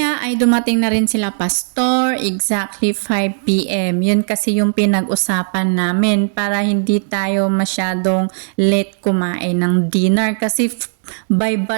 ay dumating na rin sila pastor, exactly 5 p.m. Yun kasi yung pinag-usapan namin para hindi tayo masyadong late kumain ng dinner kasi by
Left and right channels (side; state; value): left; silent; digital silence